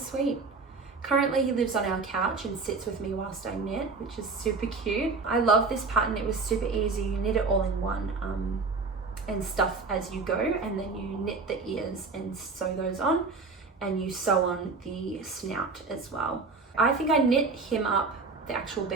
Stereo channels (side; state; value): left; quieter; 4.1 dB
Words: Currently he lives on our couch and sits with me whilst I knit, which is super cute. I love this pattern. It was super easy. You knit it all in one and stuff as you go, and then you knit the ears and sew those on, and you sew on the snout as well. I think I knit him up, the actual